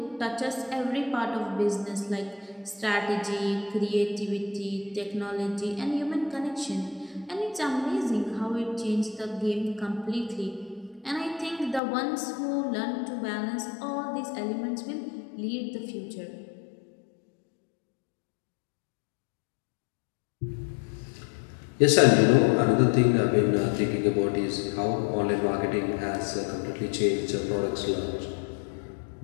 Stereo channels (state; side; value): drops out; right; at 11.8 s